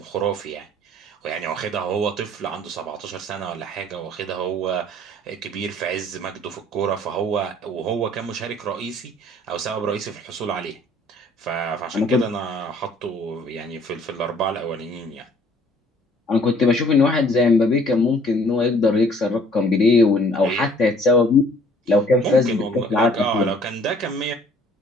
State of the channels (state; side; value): normal; both; correlation 0.57